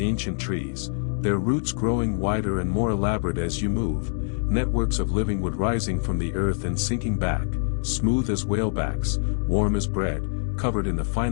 ancient trees, their roots growing wider and more elaborate as you move, networks of living wood rising from the earth and sinking back, smooth as whalebacks, warm as bread, covered in the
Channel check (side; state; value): right; silent; digital silence